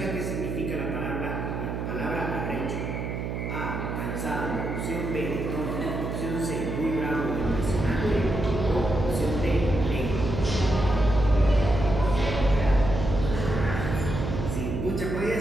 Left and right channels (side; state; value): right; noise; hum, 4 dB below the sound